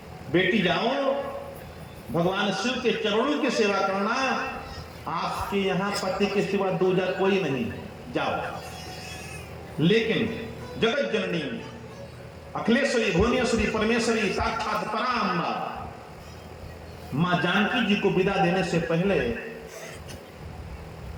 बेटी जाओ, भगवान शिव के चरणों की सेवा करना, आपके यहाँ पति के सिवा दूजा कोई नहीं, जाओ। लेकिन जगत जननी अखिलेश्वरी भुवनेश्वरी परमेश्वरी साक्षात पराम्बा मां जानकी जी को विदा देने से पहले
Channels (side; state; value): both; identical; correlation 1.00